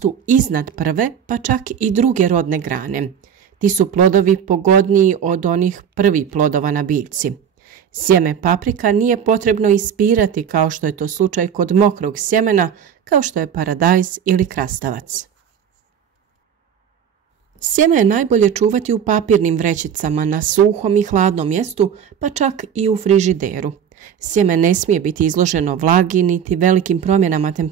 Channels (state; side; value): quieter; left; 8.2 dB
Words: iznad prve, pa čak i druge rodne grane. Ti su plodovi pogodniji od onih prvih plodova na biljci. Sjeme paprika nije potrebno ispirati kao što je to slučaj kod mokrog sjemena, kao što je paradajz ili krastavac. Sjeme je najbolje čuvati u papirnim vrećicama na suhom i hladnom mjestu, pa čak i u frižideru. Sjeme ne smije biti izloženo vlagi niti velikim promjenama